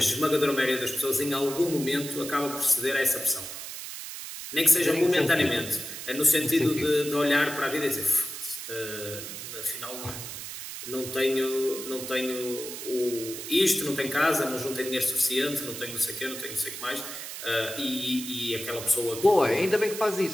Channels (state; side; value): noise; right; hiss, 9 dB below the sound